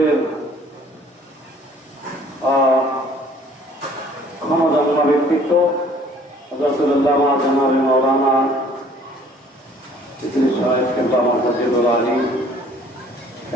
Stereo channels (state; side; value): normal; both; correlation 0.55